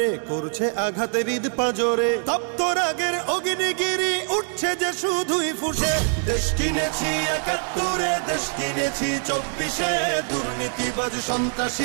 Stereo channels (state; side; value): silent; left; 56 dB below the other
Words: করছে আঘাতের ঈদ পাজরে, তপ্ত রাগের অগ্নিগিরি উঠছে যে শুধুই ফুসে। দেশ কিনেছি ৭১, দেশ কিনেছি ২৪, দুর্নীতিবাজ